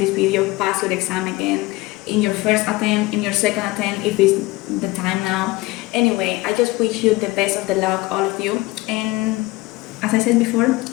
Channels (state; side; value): quieter; right; 20.4 dB